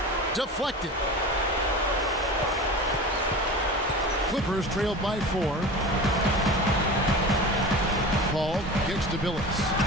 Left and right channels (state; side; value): normal; both; correlation 0.33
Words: Deflected. Clippers trailed by 4. Paul kicks to Billups.